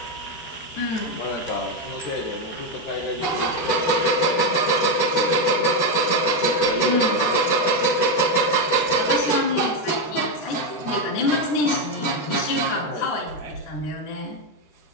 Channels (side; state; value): right; late; 12 ms